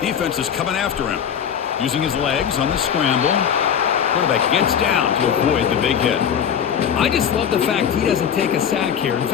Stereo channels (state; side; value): quieter; right; 8.3 dB